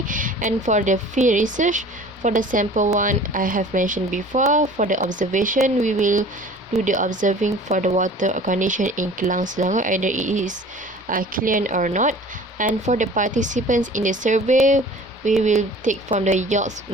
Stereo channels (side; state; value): both; normal; correlation 0.45